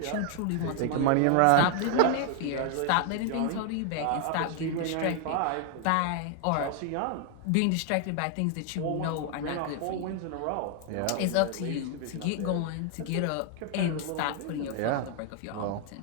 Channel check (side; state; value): both; different; correlation 0.00